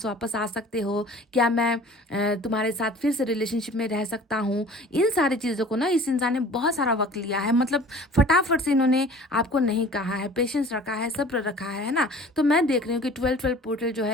वापस आ सकते हो क्या, मैं तुम्हारे साथ फिर से रिलेशनशिप में रह सकता हूँ। इन सारी चीज़ों को ना इस इंसान ने बहुत सारा वक्त लिया है, मतलब फटाफट से इन्होंने आपको नहीं कहा है, पेशेंस रखा है, सब्र रखा है ना। तो मैं देख रही हूँ कि 12-12 पोर्टल जो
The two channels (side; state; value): both; normal; correlation 0.46